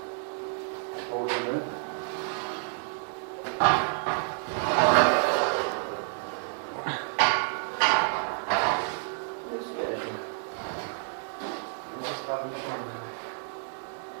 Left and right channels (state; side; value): silent; left; 58 dB below the other